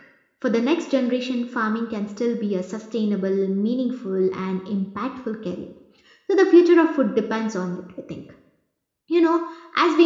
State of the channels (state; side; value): identical; both; correlation 1.00